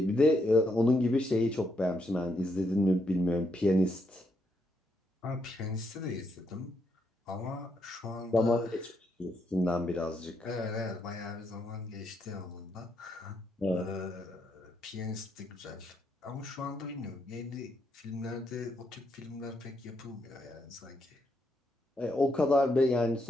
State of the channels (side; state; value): both; normal; correlation 0.78